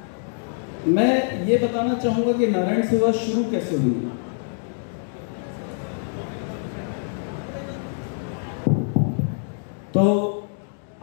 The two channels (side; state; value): right; silent; digital silence